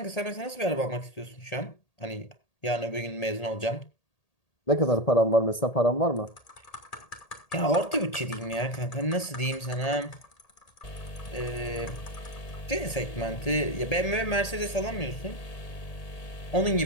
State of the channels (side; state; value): right; late; 1.8 ms